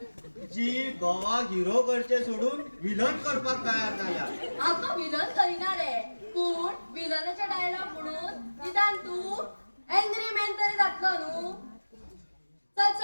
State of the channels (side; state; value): both; inverted; correlation -1.00